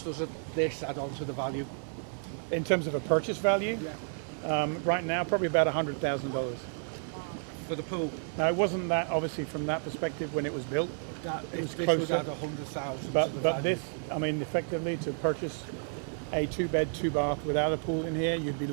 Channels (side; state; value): left; silent; 57 dB below the other